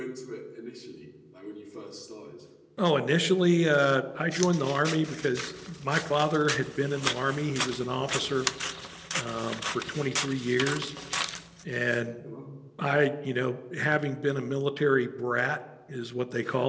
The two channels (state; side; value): identical; both; correlation 1.00